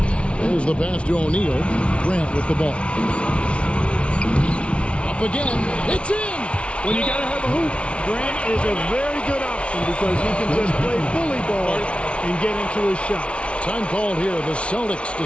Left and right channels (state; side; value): late; right; 0.060 ms